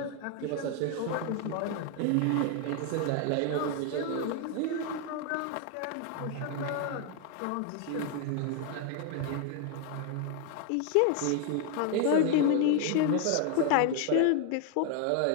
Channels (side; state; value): both; different; correlation 0.01